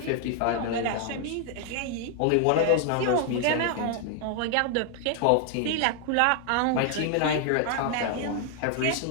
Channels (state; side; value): different; both; correlation 0.00